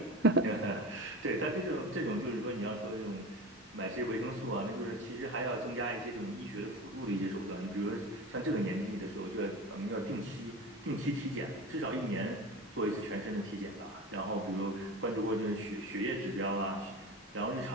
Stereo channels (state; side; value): normal; both; correlation 0.31